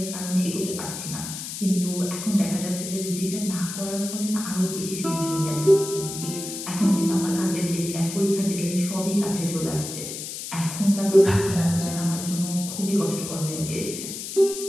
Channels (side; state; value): left; noise; hiss, 7 dB below the sound